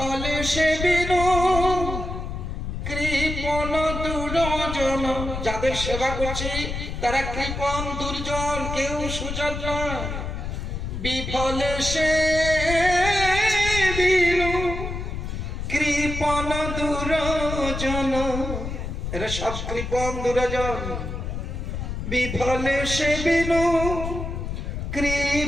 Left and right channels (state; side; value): noise; left; rumble, 5 dB below the sound